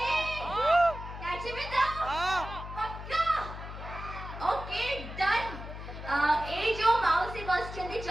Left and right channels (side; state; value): left; noise; hum, 10 dB below the sound